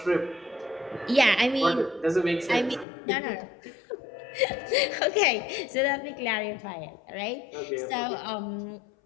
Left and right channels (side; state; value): right; drops out; at 2.9 s